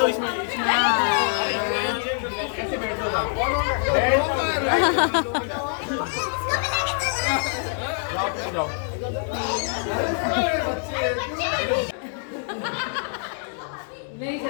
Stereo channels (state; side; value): silent; right; 60 dB below the other